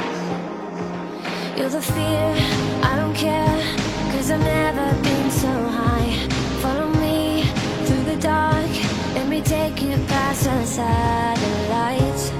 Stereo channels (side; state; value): both; identical; correlation 1.00